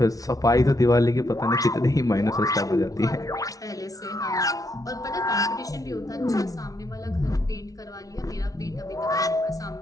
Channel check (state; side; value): late; right; 0.18 ms